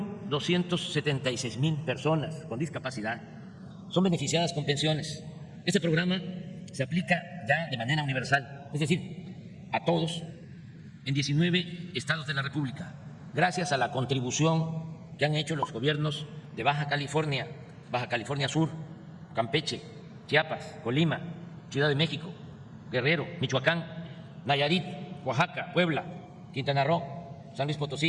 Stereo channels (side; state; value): both; identical; correlation 1.00